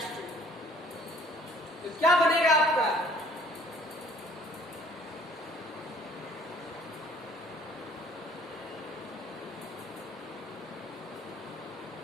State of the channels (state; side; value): normal; both; correlation 0.56